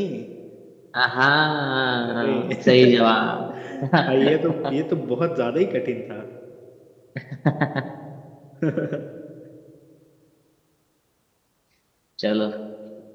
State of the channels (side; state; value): both; identical; correlation 1.00